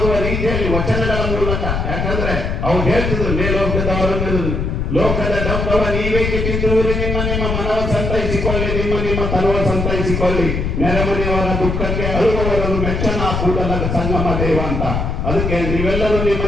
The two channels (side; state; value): left; noise; rumble, 1 dB below the sound